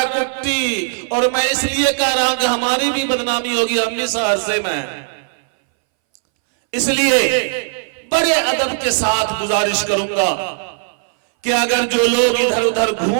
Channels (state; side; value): silent; left; 64 dB below the other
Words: کٹی، اور میں اس لیے کہہ رہا ہوں کہ ہماری بھی بدنامی ہوگی، ہم بھی سہرسے میں ہیں۔ اس لیے بڑے ادب کے ساتھ گزارش کروں گا کہ اگر جو لوگ ادھر ادھر